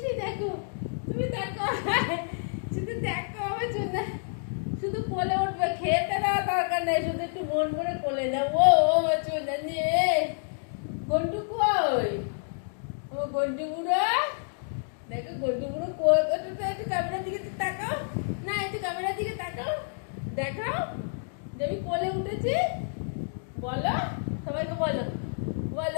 দেখো, তুমি দেখো শুধু দেখো আমার সোনা, শুধু কোলে উঠবে, খেতে দেওয়া দরকার নেই, শুধু একটু মন করে কোলে দাও। ও আমার সোনা নিয়ে গন্টু কই, ও গন্টু বুড়ো দেখো, গন্টু বুড়ো কই, একটু ক্যামেরার দিকে তাকাও না, একটু ক্যামেরার দিকে তাকাও, দেখাও যে আমি কোলে উঠেছি, বলো সবাইকে, বলো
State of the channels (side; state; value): right; silent; digital silence